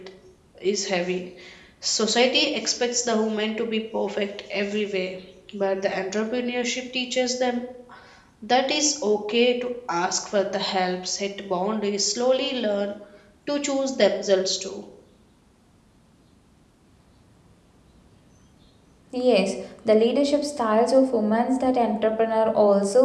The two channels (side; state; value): both; identical; correlation 1.00